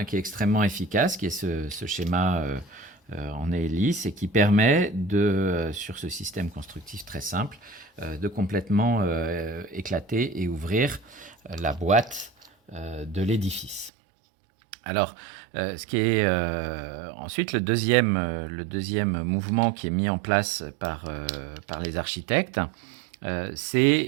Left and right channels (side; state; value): left; drops out; at 13.9 s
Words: qui est extrêmement efficace, qui est ce schéma en hélice et qui permet sur ce système constructif très simple, de complètement éclater et ouvrir la boîte de l'édifice. Alors, ce qui est ensuite le deuxième mouvement qui est mis en place par les architectes,